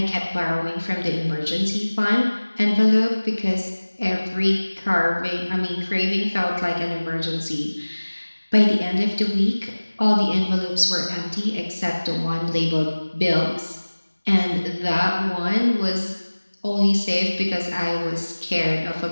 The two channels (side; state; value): both; inverted; correlation -1.00